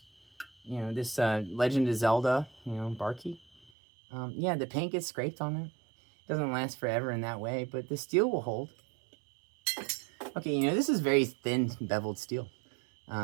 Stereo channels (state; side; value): drops out; left; at 3.7 s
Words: Legend of Zelda, bar key. Yeah, the paint gets scraped on it. Doesn't last forever in that way, but the steel will hold. Okay, this is very thin beveled steel.